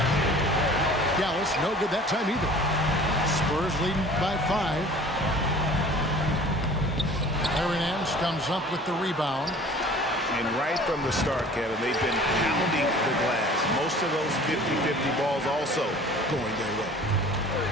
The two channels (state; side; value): normal; both; correlation 0.46